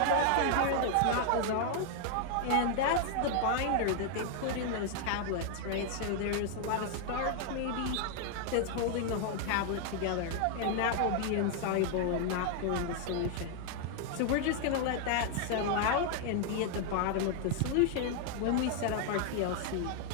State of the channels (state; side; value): different; both; correlation 0.00